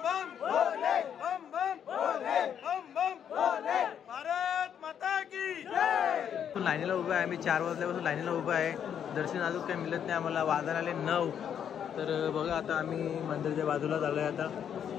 बम भोले, बम बम भोले, बम बम भोले, भारत माता की जय. लाईनीला उभा आहे आम्ही, 4 वाजल्यापासून लाईनीला उभा आहे. दर्शन अजून काही मिळत नाही आम्हाला, वाजायला आले 9. तर बघा आता आम्ही मंदिरच्या बाजूला चाललोय आता,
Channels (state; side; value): quieter; right; 8.6 dB